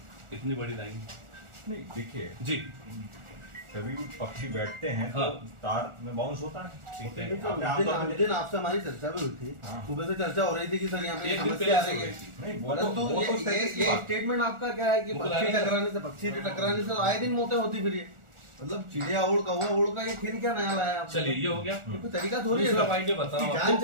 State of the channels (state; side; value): late; left; 1.4 ms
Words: इतनी बड़ी लाइन? नहीं देखिए जी, कभी भी पक्षी बैठते हैं तो तार में बाउंस होता है। ठीक है, उस दिन आपसे हमारी चर्चा भी हुई थी, सुबह से चर्चा हो रही थी कि सर यहाँ पे समस्या आ रही है। नहीं परंतु ये स्टेटमेंट आपका क्या है कि पक्षी टकराने से आए दिन मौतें होती फिर ये मतलब चिड़िया उड़ कौवा उड़ का ये फिर क्या नया लाया? चलिए ये हो गया, कोई तरीका थोड़ी है जान